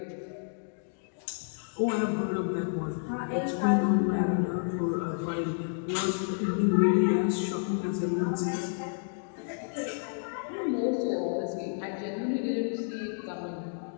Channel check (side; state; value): right; silent; digital silence